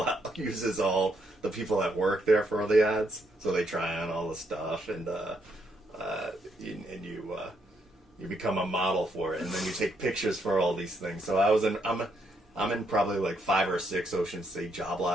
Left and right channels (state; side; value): normal; both; correlation 0.75